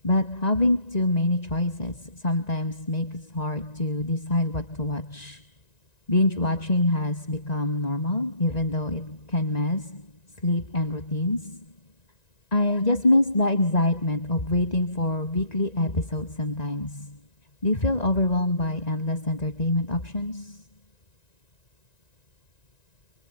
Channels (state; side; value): late; right; 1.9 ms